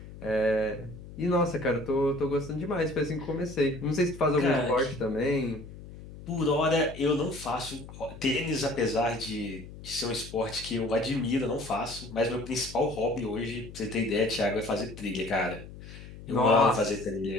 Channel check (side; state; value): left; noise; hum, 15 dB below the sound